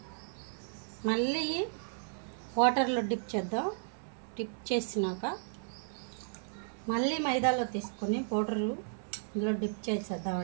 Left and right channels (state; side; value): silent; left; 55 dB below the other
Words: మళ్ళీ వాటర్లో డిప్ చేద్దాం. డిప్ చేసినాక మళ్ళీ మైదాలో తీసుకొని పౌడరు ఇందులో డిప్